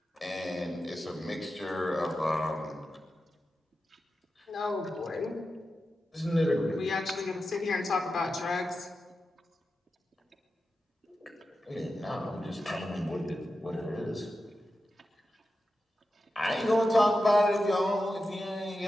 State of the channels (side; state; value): both; normal; correlation 0.91